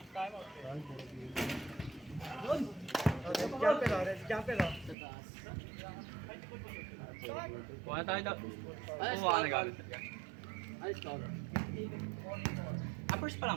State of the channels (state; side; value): drops out; left; at 5.0 s